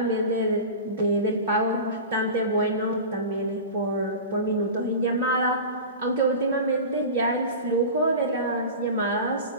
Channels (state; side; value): inverted; both; correlation -0.31